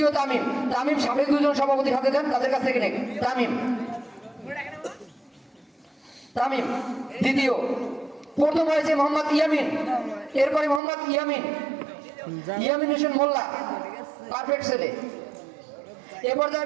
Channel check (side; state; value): left; drops out; at 10.8 s